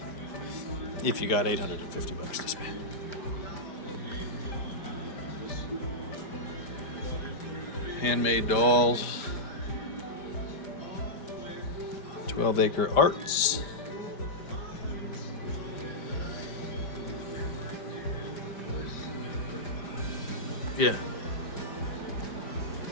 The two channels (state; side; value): late; right; 5.0 ms